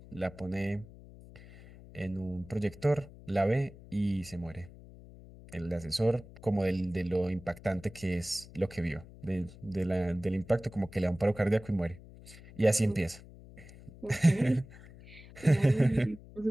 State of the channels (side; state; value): left; noise; hum, 19 dB below the sound